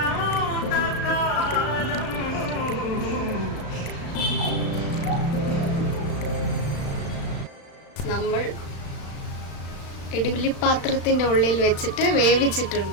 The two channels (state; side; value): late; right; 35 ms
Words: നമ്മൾ ഇഡ്ഡലി പാത്രത്തിൻ്റെ ഉള്ളിൽ വെച്ചിട്ട്